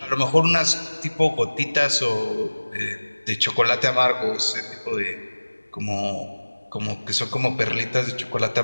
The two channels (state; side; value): inverted; both; correlation -1.00